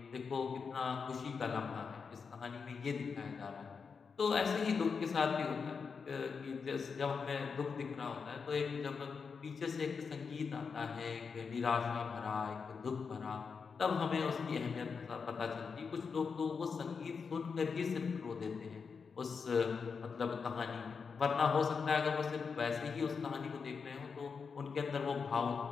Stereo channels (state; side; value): quieter; right; 5.5 dB